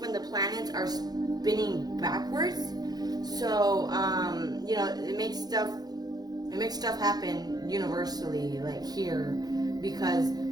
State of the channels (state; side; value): late; left; 0.19 ms